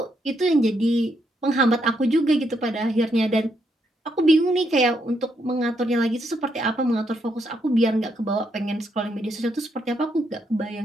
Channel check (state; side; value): normal; both; correlation 0.77